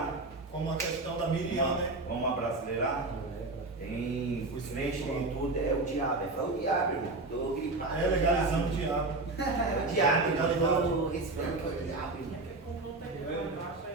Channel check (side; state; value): left; quieter; 3.1 dB